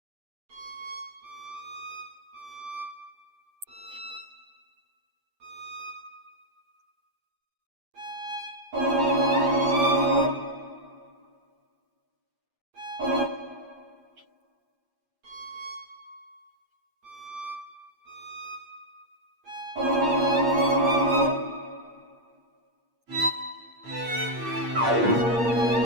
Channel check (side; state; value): left; late; 8.6 ms